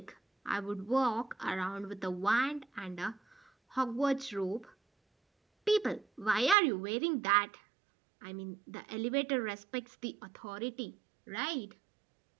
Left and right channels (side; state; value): left; drops out; at 6.6 s